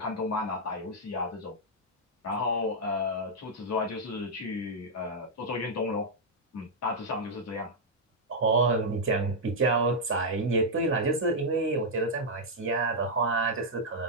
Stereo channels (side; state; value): both; normal; correlation -0.04